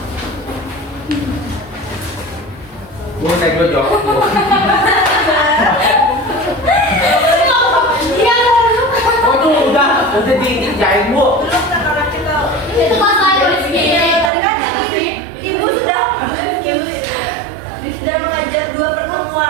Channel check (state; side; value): drops out; left; at 14.3 s